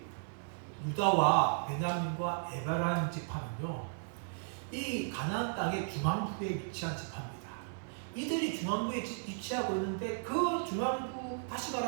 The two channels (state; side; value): silent; left; digital silence